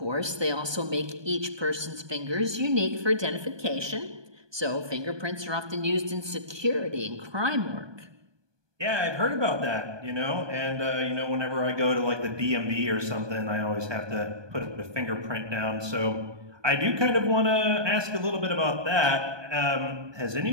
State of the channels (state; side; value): late; left; 1.2 ms